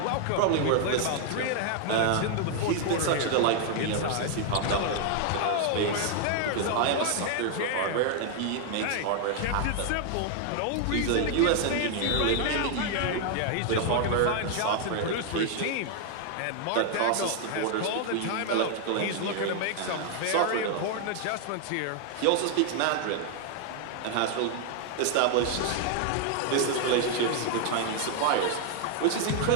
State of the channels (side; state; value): both; different; correlation 0.00